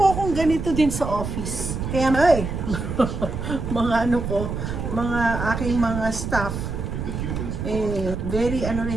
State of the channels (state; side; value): noise; right; rumble, 4 dB below the sound